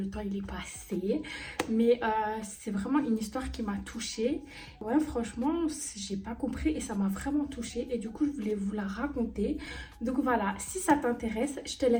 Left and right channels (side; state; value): both; identical; correlation 1.00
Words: temps il est passé. Mais c'est vraiment une histoire qui m'a touchée. Ouais, franchement, j'ai pas compris et ça m'a vraiment touchée. Et du coup, je voulais vous la raconter. Donc voilà, si ça t'intéresse, je te